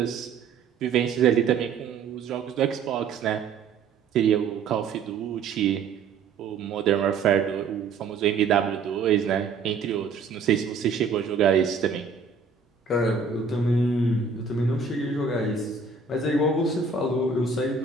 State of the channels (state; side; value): quieter; left; 5.1 dB